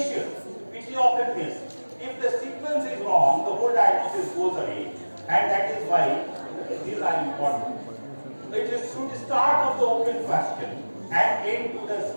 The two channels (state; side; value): inverted; both; correlation -1.00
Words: which you often miss. If the sequence is wrong, the whole diagnosis goes away, and that is why these are important. It should start of the open question and end to the